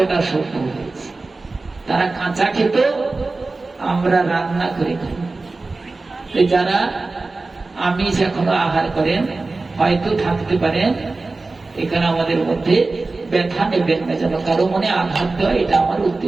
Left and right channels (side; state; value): left; quieter; 3.5 dB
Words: সভ্য হয়েছে। তারা কাঁচা খেত, আমরা রান্না করে খাই। যারা আমিষ এখনো আহার করেন হয়তো থাকতে পারেন এখানে আমাদের মধ্যে, ব্যথা নেবেন না, যেন কারো মনে আঘাত দেওয়া এটা আমার